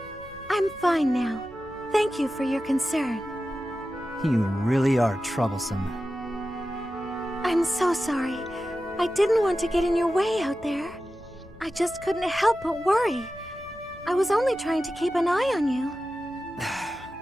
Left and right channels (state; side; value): normal; both; correlation 0.93